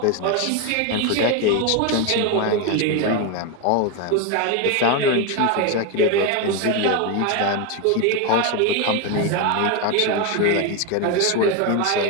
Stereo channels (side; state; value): both; different; correlation 0.02